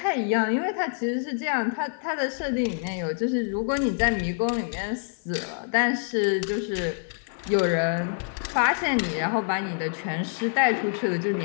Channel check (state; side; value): silent; right; digital silence